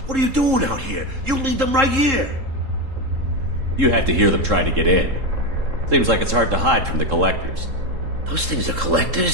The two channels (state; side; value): late; left; 3.7 ms